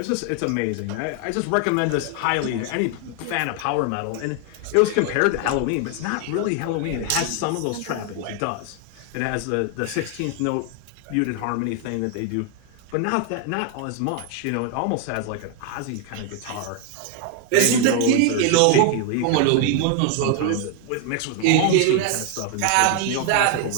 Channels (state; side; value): different; both; correlation 0.01